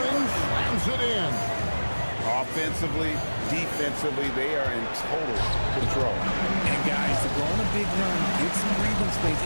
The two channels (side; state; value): both; inverted; correlation -1.00